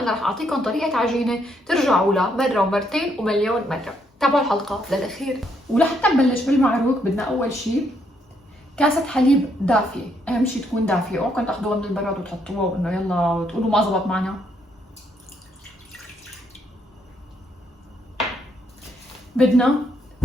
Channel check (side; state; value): both; normal; correlation 0.73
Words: رح اعطيكم طريقة عجينة ترجعوا لها مرة ومرتين ومليون مرة. تابعوا الحلقة للاخير. ولحتى نبلش بالمعروك بدنا اول شيء كاسة حليب دافية، اهم شيء تكون دافية، اوعكم تاخذوها من البراد وتحطوها وانه يلا وتقولوا ما زبط معنا. بدنا